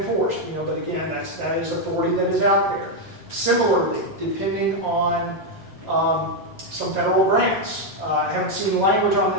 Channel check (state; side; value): normal; both; correlation 0.02